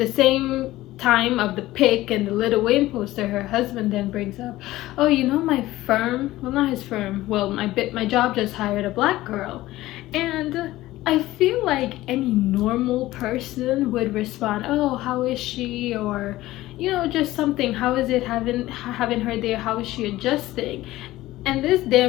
time of the pic and the Lil Wayne poster, her husband then brings up, oh, you know, my firm, well, not his firm, well, my job just hired a black girl. And I feel like any normal person would respond, oh, how is she? Or, you know, just something, how is it having her there? How is she adjusting? And this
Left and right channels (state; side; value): quieter; right; 16.7 dB